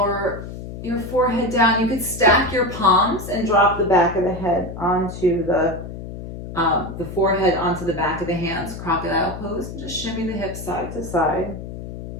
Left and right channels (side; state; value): left; noise; hum, 10 dB below the sound